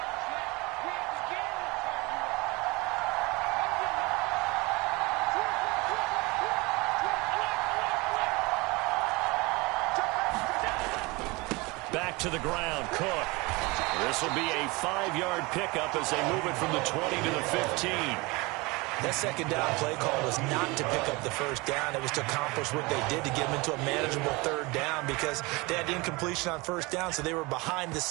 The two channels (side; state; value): left; quieter; 24.8 dB